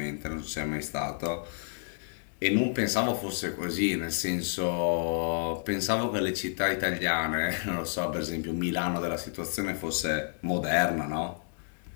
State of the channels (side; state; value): right; silent; 55 dB below the other